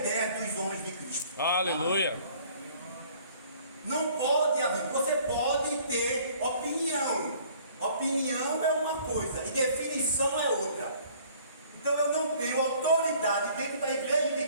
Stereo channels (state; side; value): inverted; both; correlation -0.56